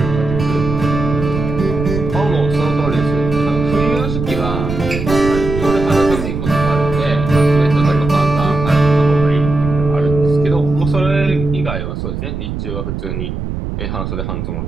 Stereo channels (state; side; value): noise; right; rumble, 5 dB below the sound